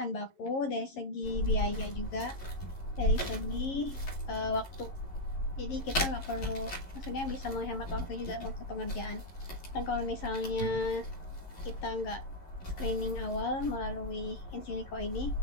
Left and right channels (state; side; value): late; right; 11 ms